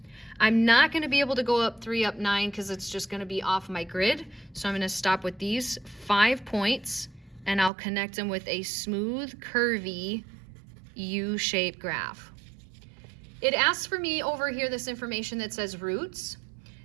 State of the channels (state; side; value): drops out; left; at 7.7 s